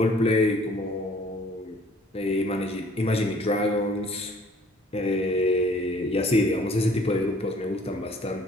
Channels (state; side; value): normal; both; correlation 0.56